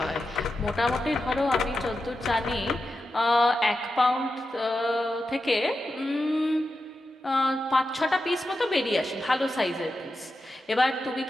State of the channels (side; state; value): both; normal; correlation 0.90